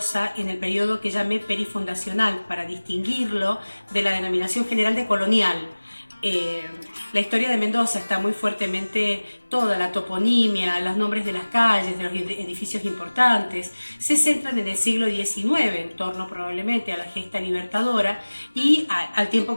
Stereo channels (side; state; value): both; inverted; correlation -1.00